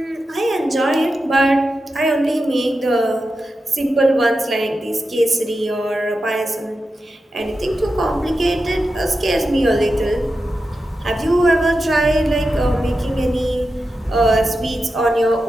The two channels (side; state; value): both; normal; correlation 0.90